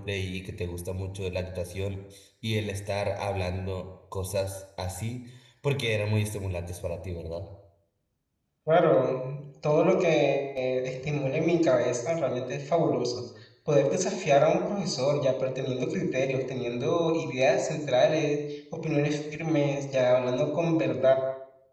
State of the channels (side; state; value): both; identical; correlation 1.00